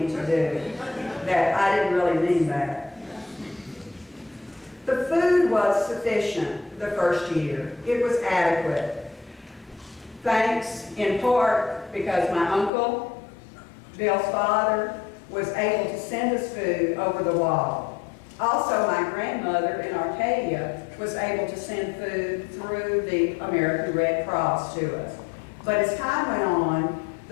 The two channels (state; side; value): drops out; right; at 12.7 s